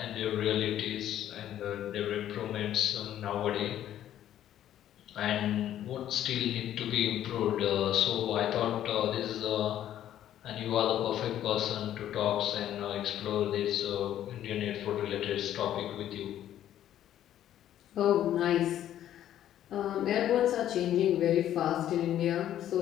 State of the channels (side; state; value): right; quieter; 11.6 dB